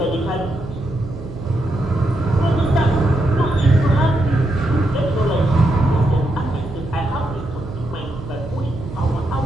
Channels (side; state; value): right; noise; hum, 13 dB below the sound